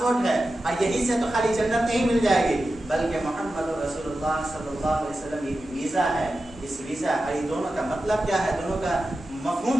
ہے، اور یہیں سے تو خالی جنت نہیں مل جائے گی بلکہ محمد رسول اللہ صلی اللہ علیہ وسلم یہ ویزا ہے۔ اس ویزا یہ دونوں کا مطلب کیا ہے، دونوں کا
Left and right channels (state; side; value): normal; both; correlation 0.92